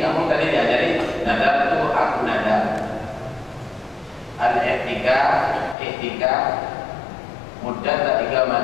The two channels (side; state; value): right; drops out; at 5.8 s